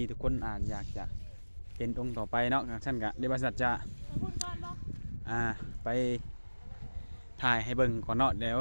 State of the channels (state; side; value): inverted; both; correlation -1.00